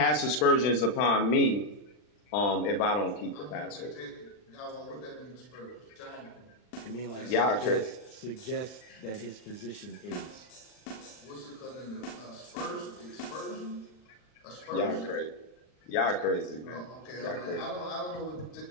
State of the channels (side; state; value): right; late; 39 ms